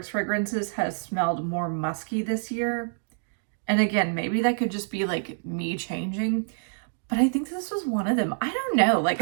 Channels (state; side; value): silent; left; digital silence